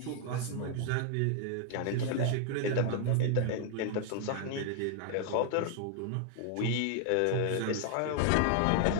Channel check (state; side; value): different; both; correlation 0.00